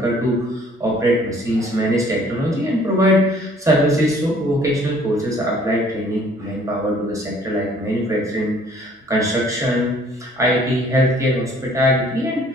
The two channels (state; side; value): normal; both; correlation 0.57